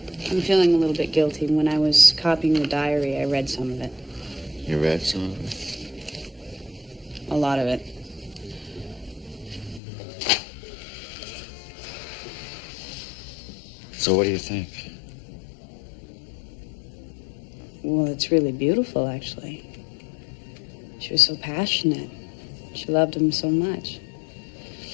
I'm feeling a little bit guilty. When I was copying the diary, I read some of it. You read some of it? A lot of it. So what do you think? Well, it's really beautiful, actually. She was so passionate. She loved him so much.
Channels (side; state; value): right; drops out; at 9.8 s